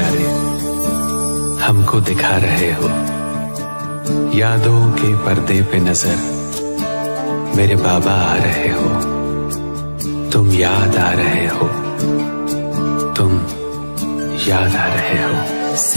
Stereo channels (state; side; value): inverted; both; correlation -1.00